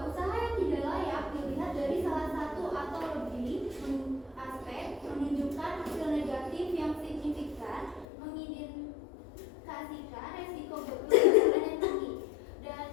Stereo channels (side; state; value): right; drops out; at 8.1 s